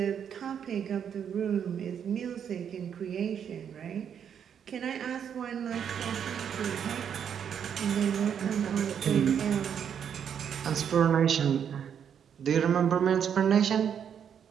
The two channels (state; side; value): quieter; left; 8.2 dB